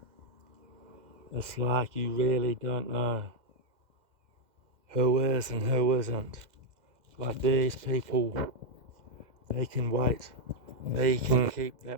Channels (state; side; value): late; left; 2.0 ms